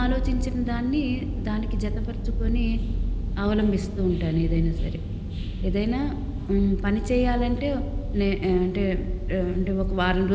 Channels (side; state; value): both; identical; correlation 1.00